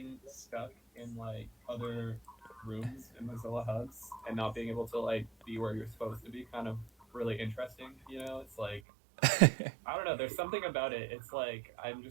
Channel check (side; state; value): left; drops out; at 8.8 s